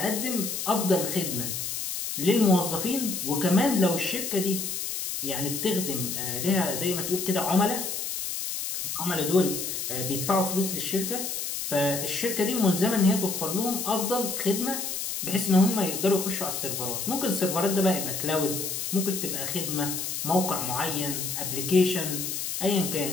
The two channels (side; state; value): left; noise; hiss, 3 dB below the sound